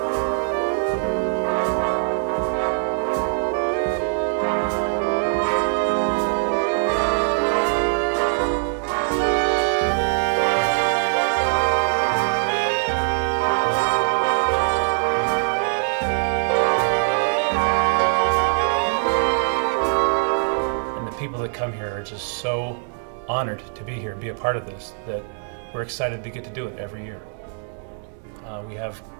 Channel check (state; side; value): silent; left; digital silence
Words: that come here are just so honored to be here, be a part of this, that we're excited to get to do it every year. We have